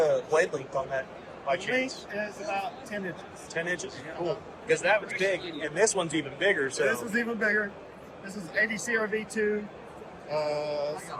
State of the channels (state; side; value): identical; both; correlation 1.00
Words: blade length on that by chance? Length is about 10 inches. 10 inches? Cool. Because that was big, and this one's even bigger. So This is even bigger. This is 80 CRV2,